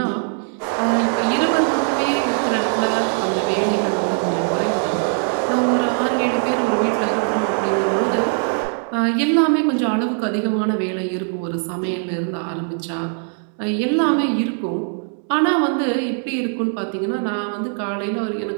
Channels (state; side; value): silent; left; 56 dB below the other